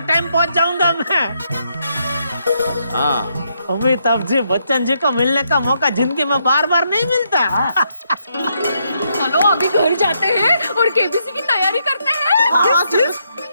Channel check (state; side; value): inverted; both; correlation -0.77